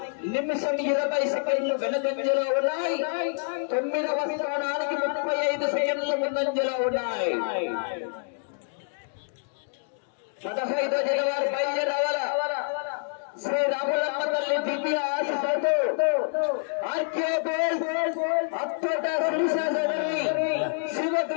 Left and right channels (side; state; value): right; silent; digital silence